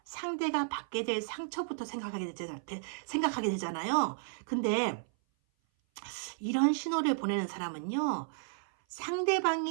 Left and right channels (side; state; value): left; silent; 56 dB below the other